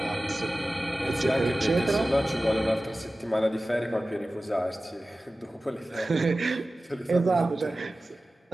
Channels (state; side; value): normal; both; correlation 0.96